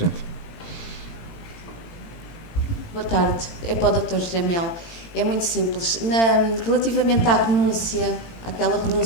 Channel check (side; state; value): right; late; 18 ms